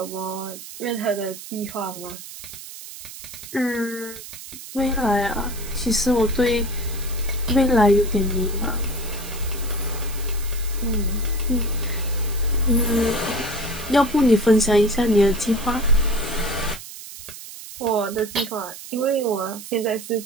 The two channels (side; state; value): right; noise; hiss, 13 dB below the sound